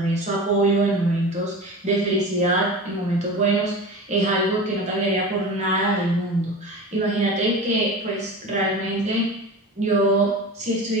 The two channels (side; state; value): both; normal; correlation 0.32